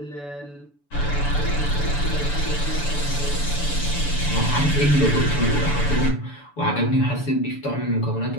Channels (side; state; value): right; late; 6.9 ms